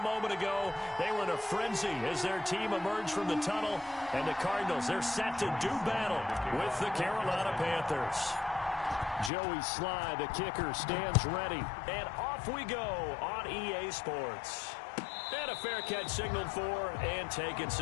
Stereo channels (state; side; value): drops out; right; at 9.3 s